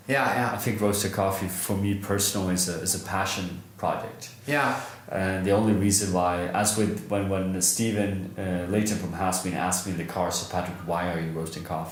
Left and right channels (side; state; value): both; identical; correlation 1.00